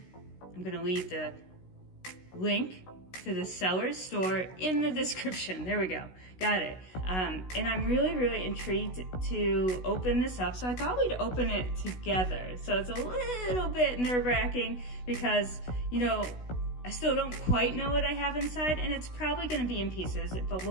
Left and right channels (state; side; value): late; right; 16 ms